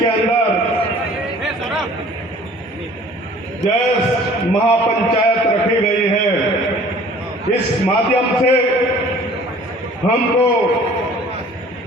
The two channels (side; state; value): both; normal; correlation 0.50